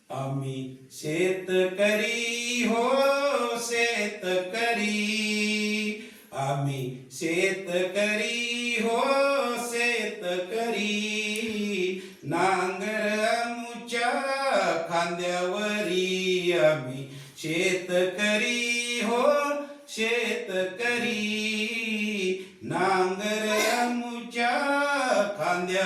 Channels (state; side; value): identical; both; correlation 1.00